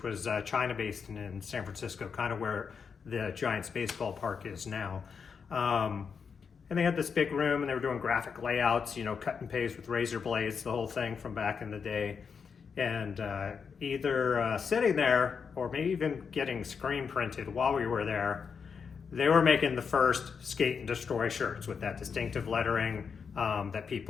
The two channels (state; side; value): quieter; right; 6.1 dB